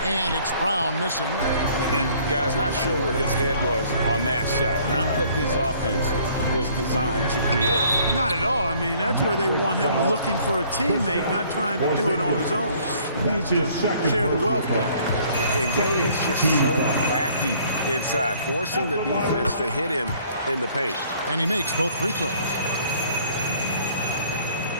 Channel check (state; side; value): inverted; both; correlation -0.58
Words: And it's Brown missing. And guys, not sure where his head was on that shot. Not what this offense was designed to create. Not at all. I mean, that's where they want him looking for a teammate, not trying to do it on his own. He needs to share the wealth there. And Gay is just so crafty inside, forcing the defense to hit him in the paint. And he makes both free throws.